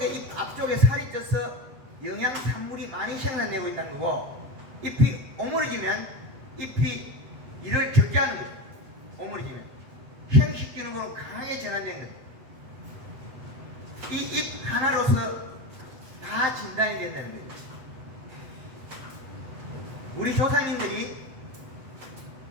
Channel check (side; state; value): left; late; 8.0 ms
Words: 살이 쪄서 영양 산물이 많이 생산되고 있다는 거고, 잎이 오므려지면 잎이 이를 적게 하는 거죠. 오므려지면 형식 기능으로 강하게 전환된 거죠. 이 잎 하나로서 다 진단이 된다는 거예요. 우리 조상님들이